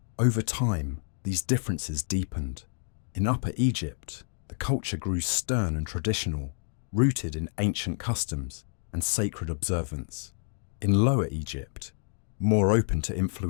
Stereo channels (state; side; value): silent; right; digital silence